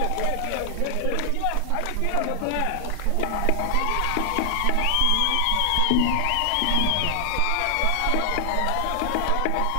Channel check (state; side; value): different; both; correlation 0.00